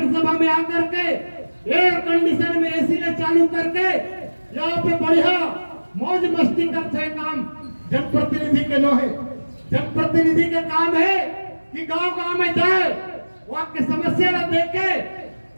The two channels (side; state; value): both; inverted; correlation -1.00